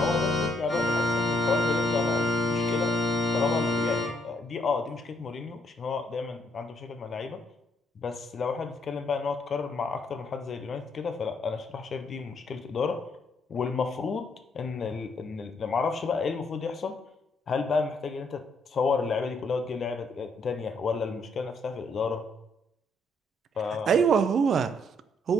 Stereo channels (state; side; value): normal; both; correlation 0.71